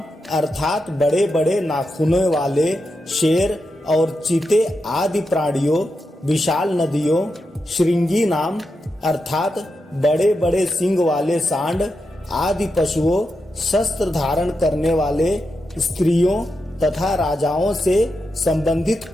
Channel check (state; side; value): normal; both; correlation 0.87